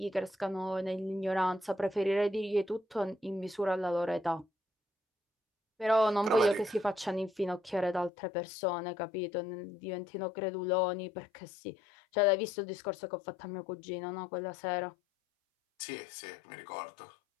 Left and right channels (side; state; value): right; drops out; at 8.1 s